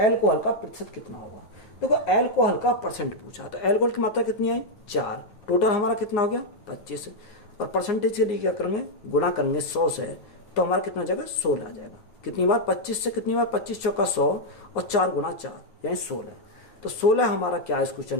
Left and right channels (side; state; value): right; late; 9.6 ms